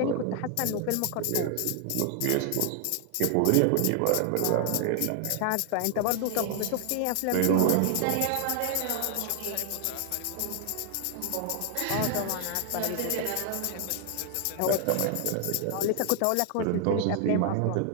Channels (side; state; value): both; different; correlation 0.00